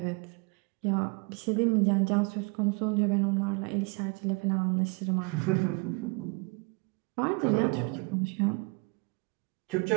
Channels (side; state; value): left; quieter; 31.1 dB